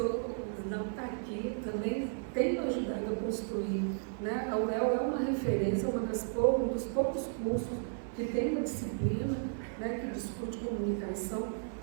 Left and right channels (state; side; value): silent; left; 55 dB below the other